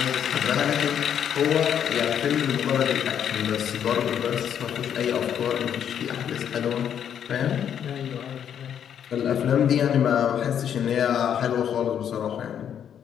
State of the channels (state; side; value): quieter; right; 8.9 dB